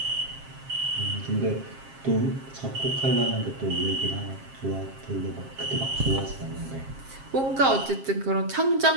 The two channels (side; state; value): left; late; 7.5 ms